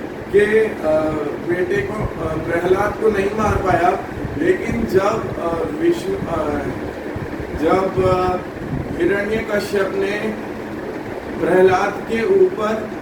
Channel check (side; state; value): both; identical; correlation 1.00